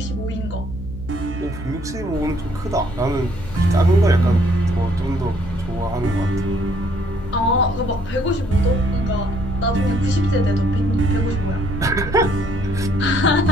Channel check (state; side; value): noise; left; hum, 14 dB below the sound